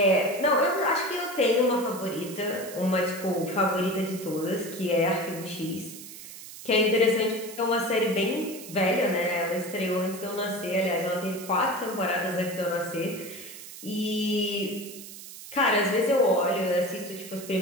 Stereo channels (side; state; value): right; noise; hiss, 14 dB below the sound